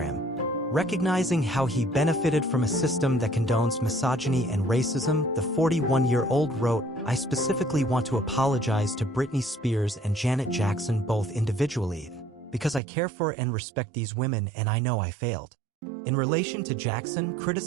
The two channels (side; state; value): left; drops out; at 12.8 s